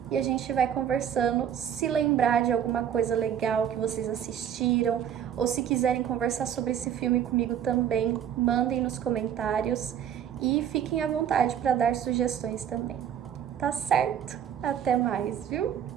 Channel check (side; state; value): left; quieter; 9.2 dB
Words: e a gente vai conversando. Se lembrar de alguma coisa legal que vocês assistiram ou se quiserem conversar sobre esse filme comigo também, mandem nos comentários e fiquem à vontade para dar sugestões também. Tá certo? Até mais, viu?